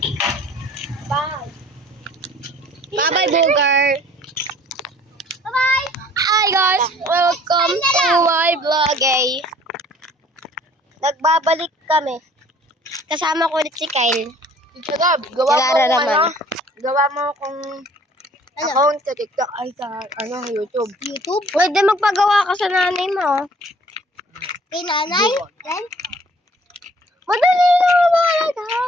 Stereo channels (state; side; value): normal; both; correlation 0.54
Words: Bye. Bye-bye, Booger. Bye-bye. Hi guys, welcome to my vlog eh. Nagbabalik kami. Kasama ko ulit si Kyle. Gab, gawa mo Kilala kung naman. ano. Gawa mo kung account sa TikTok ay sa YouTube. YouTube? Pwede magpagawa ka sa nanay mo. Kay nanay? Then? Madali lang talaga.